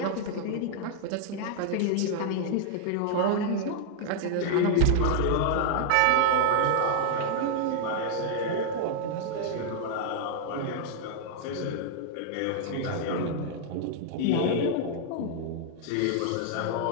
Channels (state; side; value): different; both; correlation 0.00